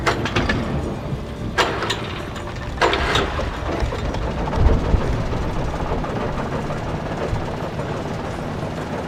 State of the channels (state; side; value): identical; both; correlation 1.00